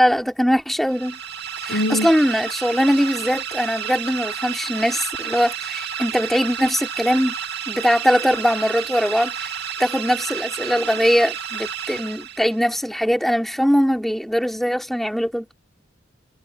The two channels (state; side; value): normal; both; correlation 0.91